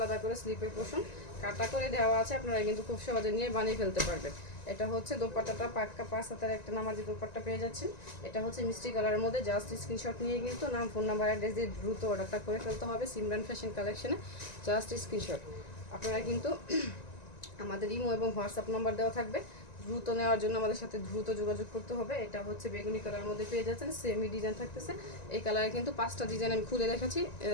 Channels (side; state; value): right; late; 1.9 ms